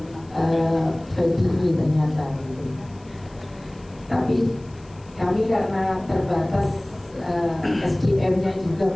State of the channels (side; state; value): left; noise; hiss, 29 dB below the sound